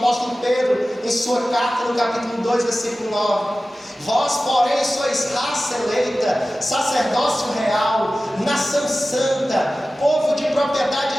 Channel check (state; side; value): normal; both; correlation 0.96